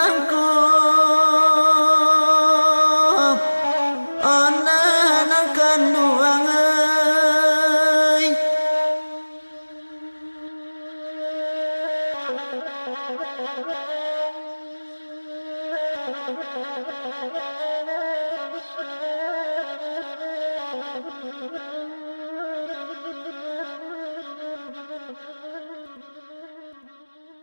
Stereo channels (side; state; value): both; inverted; correlation -1.00